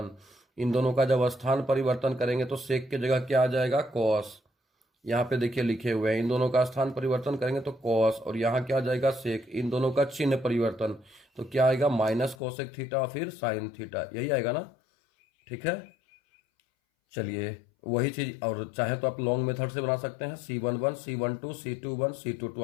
इन दोनों का जब स्थान परिवर्तन करेंगे तो सेक की जगह क्या आ जाएगा, कॉस। यहाँ पे देखिए लिखे हुए हैं, इन दोनों का स्थान परिवर्तन करेंगे तो कॉस, और यहाँ क्या आ जाएगा, सेक। इन दोनों का चिन्ह परिवर्तन तो क्या आएगा, माइनस कोसेक थीटा फिर साइन थीटा, यही आएगा ना, ठीक है। चलिए वही चीज, और चाहे तो आप लॉन्ग मेथड से बना सकते हैं, C11 C12 C21 C22,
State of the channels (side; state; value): right; drops out; at 12.4 s